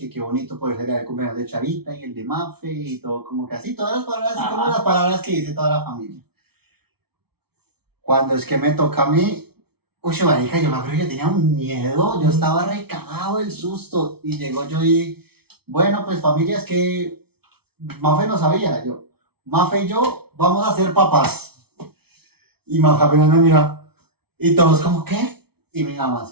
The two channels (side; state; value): left; late; 0.96 ms